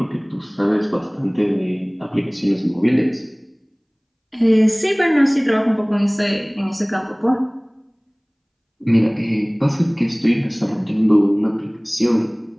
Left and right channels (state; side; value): identical; both; correlation 1.00